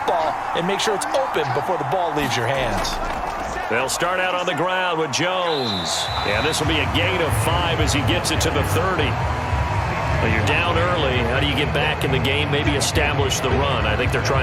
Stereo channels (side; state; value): both; identical; correlation 1.00